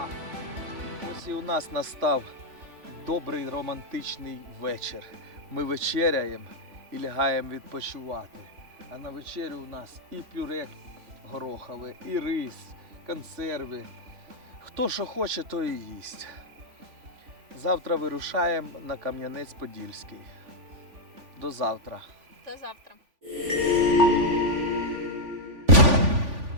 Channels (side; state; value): left; late; 3.5 ms